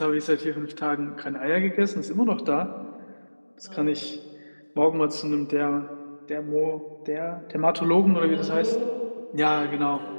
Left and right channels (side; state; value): both; inverted; correlation -1.00